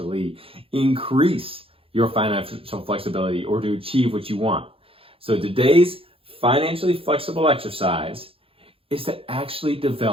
increase your financial flexibility or to achieve what you want. So today's financially flexible exercise is to actually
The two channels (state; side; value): late; left; 0.27 ms